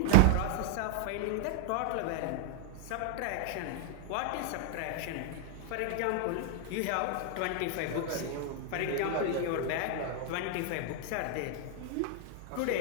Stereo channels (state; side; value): different; both; correlation 0.00